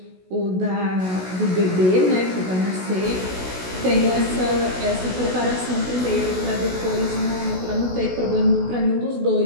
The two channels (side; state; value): left; late; 16 ms